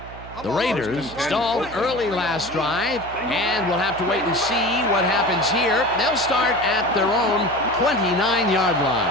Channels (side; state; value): right; noise; hum, 16 dB below the sound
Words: The Raiders stalled early last drive, and we'll have to wait and see what happens here. They'll start at their own 29-yard